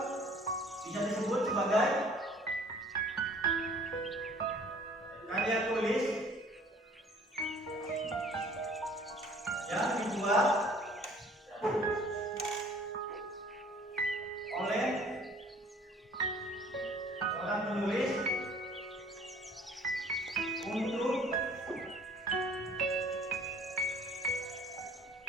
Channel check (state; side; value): normal; both; correlation 0.53